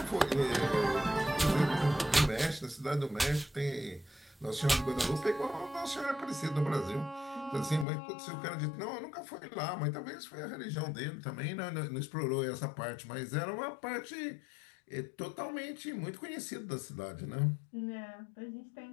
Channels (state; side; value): drops out; right; at 7.9 s